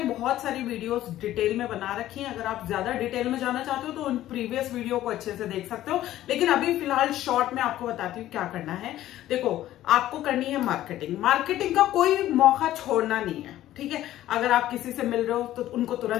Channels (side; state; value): right; quieter; 13.8 dB